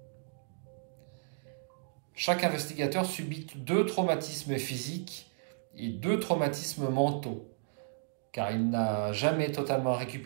Chaque investigateur subit 2 traumatismes physiques et 2 traumatismes mentaux, car il n'a jamais totalement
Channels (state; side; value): silent; left; digital silence